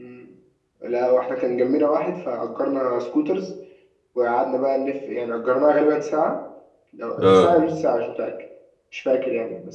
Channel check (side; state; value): both; identical; correlation 1.00